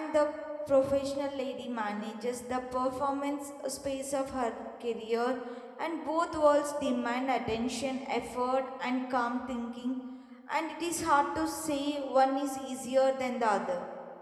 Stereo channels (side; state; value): both; identical; correlation 1.00